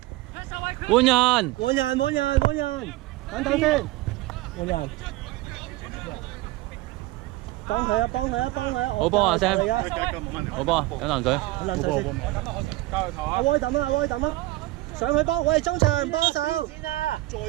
換人，等先，換人。幫佢啊！好波啊 Sam！ 好波，飲啖水。阿威抌啊！上去幫，喂，中場幫手。先啊！再要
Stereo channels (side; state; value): left; quieter; 18.6 dB